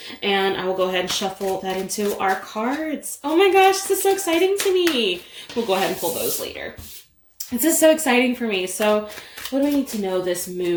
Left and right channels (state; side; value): identical; both; correlation 1.00